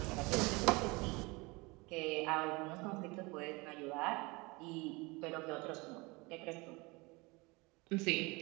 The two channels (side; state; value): left; quieter; 25.3 dB